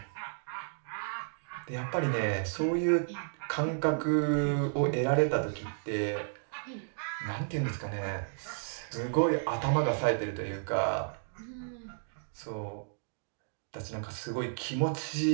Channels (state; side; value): silent; left; digital silence